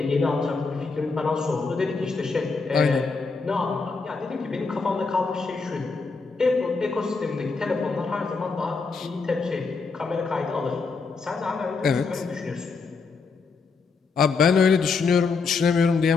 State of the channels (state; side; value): quieter; right; 4.6 dB